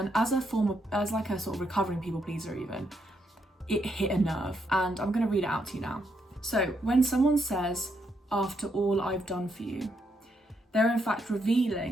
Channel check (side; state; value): both; normal; correlation 0.78